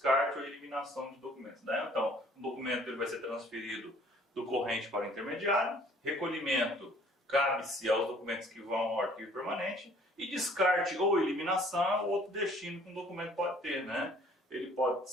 ou eliminação de documentos, né? Então, o documento ele vai ser transferido do corrente para o intermediário, recolhimento cabe-se aos documentos que vão ao arquivo permanente e descarte ou eliminação, outro destino que um documento pode ter, né? Ele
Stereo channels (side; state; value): both; normal; correlation 0.56